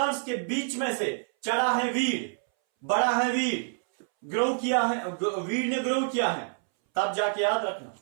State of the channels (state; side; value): silent; left; 60 dB below the other